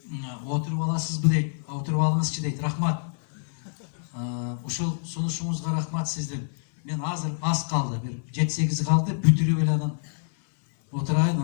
Отуруп аласызбы дейт. Отуруп алыңызчы дейт. Рахмат. Ушул сунушуңузга рахмат сиздин. Мен азыр аз калды, бир 7-8 калды, бүтүрүп эле анан отурайын,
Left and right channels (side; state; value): right; silent; 58 dB below the other